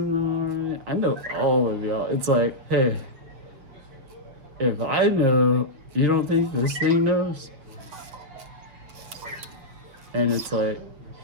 the morning. I know all of y'all. It's like, hey, if I know, you don't think this thing knows? And it's like,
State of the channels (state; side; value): late; left; 7.5 ms